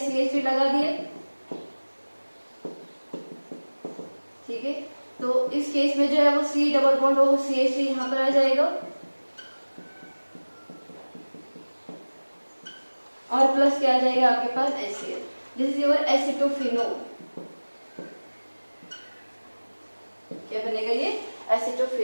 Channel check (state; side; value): inverted; both; correlation -1.00